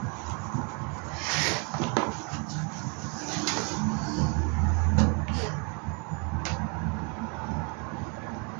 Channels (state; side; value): quieter; left; 33.4 dB